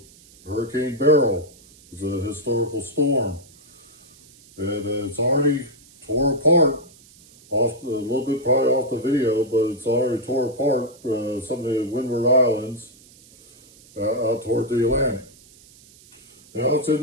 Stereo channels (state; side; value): noise; right; hiss, 25 dB below the sound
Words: Hurricane Beryl is a historical storm. And it's already tore apart a little bit probably off the video, but it's already tore apart some of the Windward Islands out toward the Atlantic. Now it's in